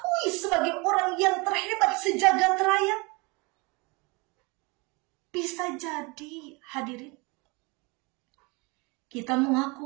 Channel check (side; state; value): left; quieter; 27.7 dB